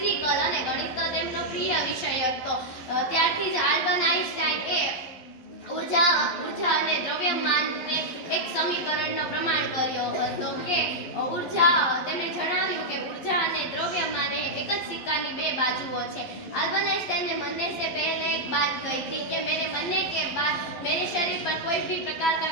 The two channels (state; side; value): late; right; 11 ms